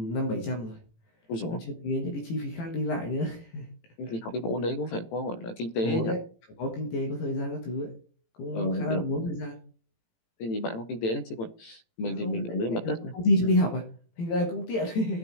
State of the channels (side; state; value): right; late; 18 ms